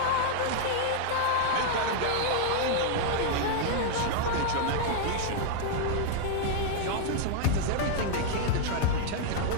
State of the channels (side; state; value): both; different; correlation 0.00